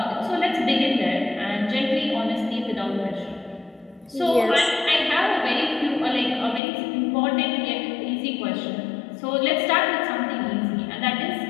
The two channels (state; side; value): drops out; right; at 6.6 s